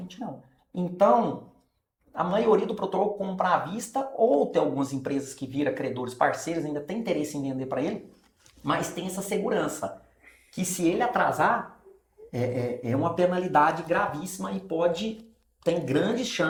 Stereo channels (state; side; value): identical; both; correlation 1.00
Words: não. Então, a maioria do protocolo compra à vista, ou tem algumas empresas que viram credores parceiros, ainda tem interesse em vender para ele, mas tem essa segurança, que se ele atrasar, é uma penalidade gravíssima e tem grande